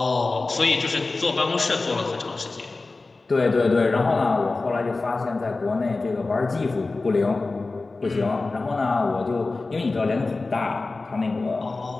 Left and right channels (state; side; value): quieter; right; 3.5 dB